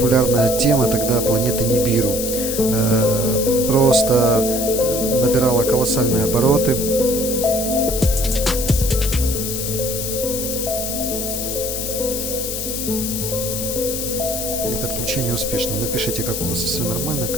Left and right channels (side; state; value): left; noise; hiss, 4 dB below the sound